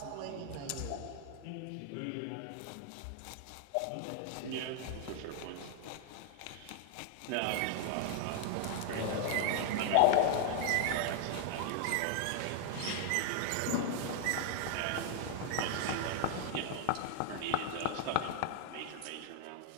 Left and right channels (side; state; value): both; different; correlation 0.00